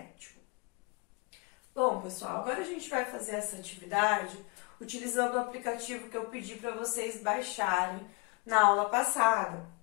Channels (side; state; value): right; quieter; 28.2 dB